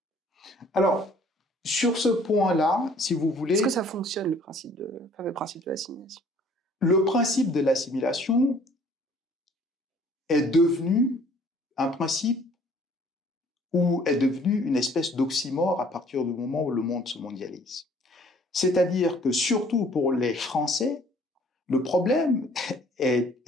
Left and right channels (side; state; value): both; normal; correlation 0.57